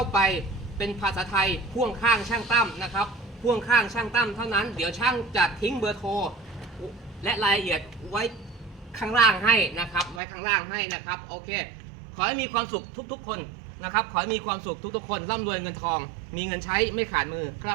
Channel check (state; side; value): drops out; left; at 10.2 s